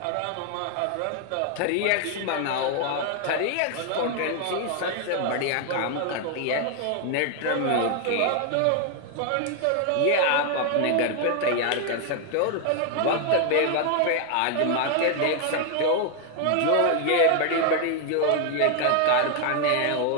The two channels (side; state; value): both; different; correlation 0.00